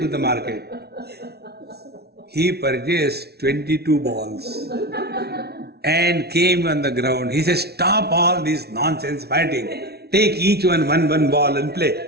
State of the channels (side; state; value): left; late; 0.47 ms